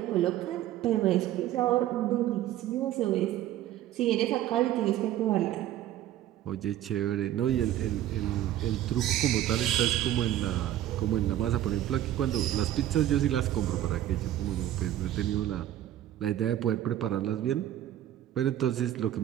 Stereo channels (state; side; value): quieter; left; 12.6 dB